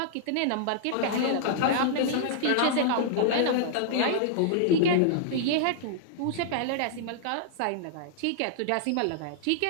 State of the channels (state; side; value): different; both; correlation -0.01